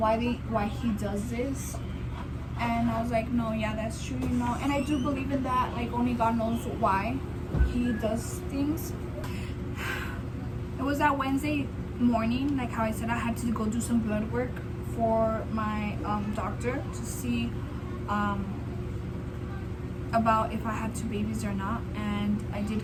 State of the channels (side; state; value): both; identical; correlation 1.00